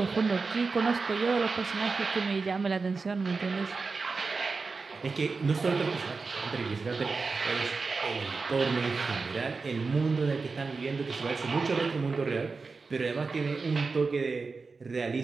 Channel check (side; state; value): left; quieter; 4.3 dB